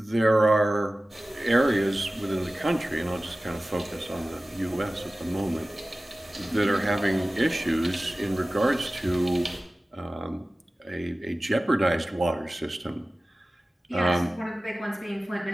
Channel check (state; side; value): normal; both; correlation 0.96